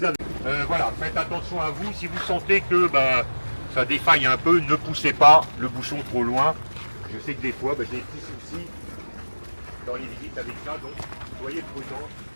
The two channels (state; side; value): inverted; both; correlation -1.00